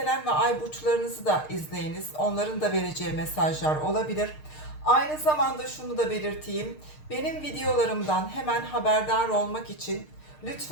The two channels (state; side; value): late; right; 6.6 ms